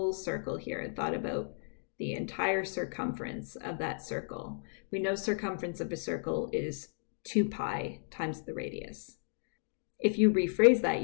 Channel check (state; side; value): silent; right; digital silence